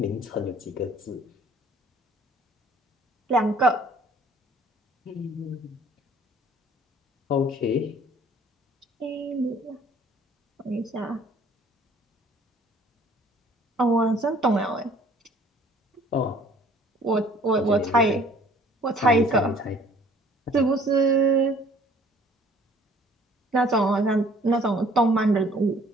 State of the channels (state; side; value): normal; both; correlation 0.55